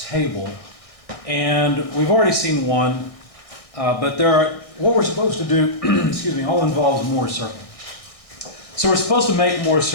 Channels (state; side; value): late; right; 1.6 ms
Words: and we've already seen one, but what we're supposed to do, excuse me, all involves Moore's circle. So we're supposed to make Moore's